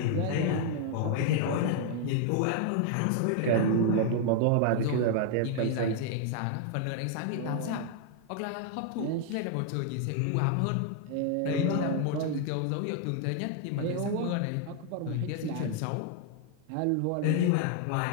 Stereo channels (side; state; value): both; different; correlation 0.00